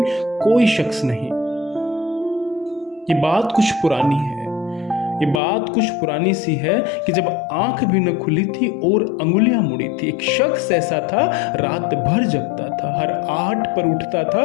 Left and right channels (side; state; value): right; drops out; at 5.4 s